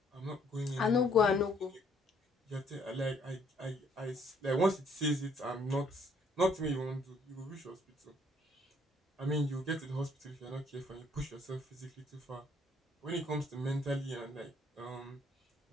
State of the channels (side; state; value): both; normal; correlation 0.64